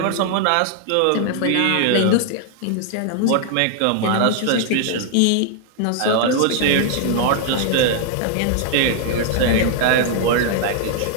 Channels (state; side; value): different; both; correlation 0.00